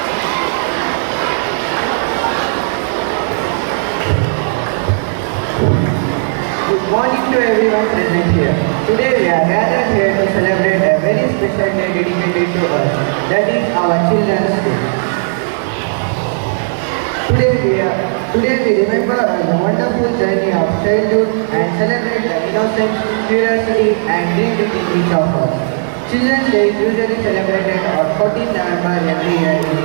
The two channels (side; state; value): left; silent; digital silence